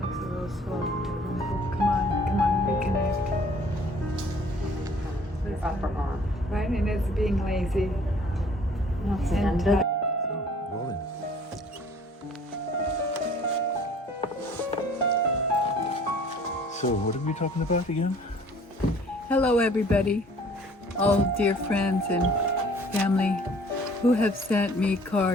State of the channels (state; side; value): normal; both; correlation 0.54